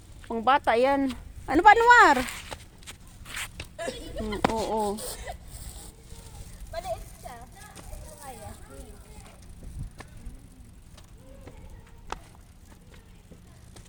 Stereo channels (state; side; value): identical; both; correlation 1.00